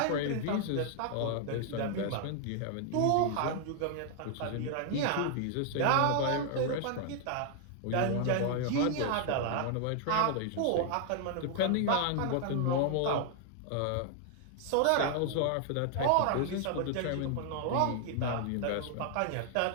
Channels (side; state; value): both; different; correlation 0.00